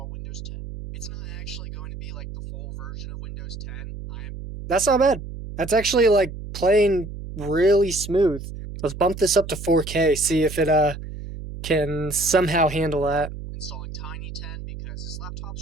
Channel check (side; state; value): right; noise; hum, 10 dB below the sound